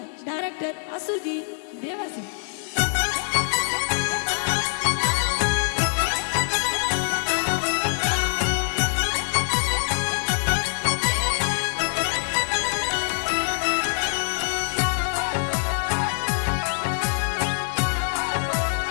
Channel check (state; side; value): silent; right; digital silence